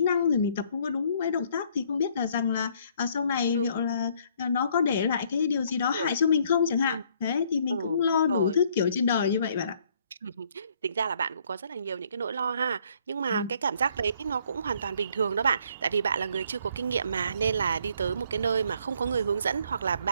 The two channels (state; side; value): inverted; both; correlation -0.64